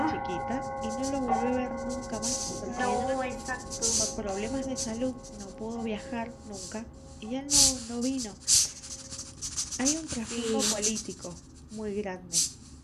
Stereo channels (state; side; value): identical; both; correlation 1.00